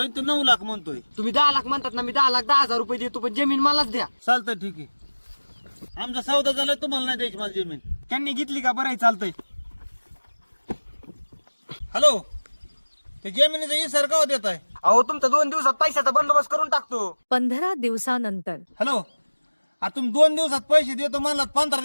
तू 9 लाख म्हणतोय. तुम्ही 10 लाख म्हणतात ना, मी 10,10,000 रुपये देतो, पण जमीन मलाच द्या. चालतंय, ठीक आहे. आमचा सौदा झालाय, तुम्हाला नाही द्यायची मला जमीन. त्यांनी घेतली का? बरं चालतंय. हॅलो, ते जमिनीचा इसार का देत आहे? अहो तुमचा 2 दिवसात पैशाचा बंदोबस्त करून टाकतो. 15 दिवसानंतर. हॅलो, आता तुम्ही 2 दिवसात पैसे देतो म्हणलात, 15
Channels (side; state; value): both; inverted; correlation -1.00